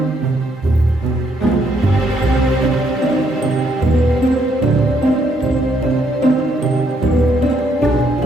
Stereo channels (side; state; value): both; normal; correlation 0.72